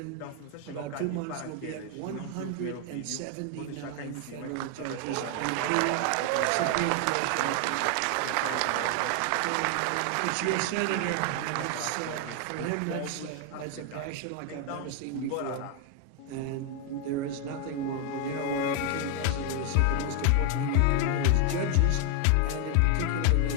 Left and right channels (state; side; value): different; both; correlation 0.01